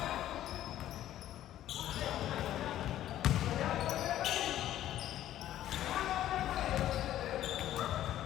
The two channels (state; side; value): quieter; right; 12.6 dB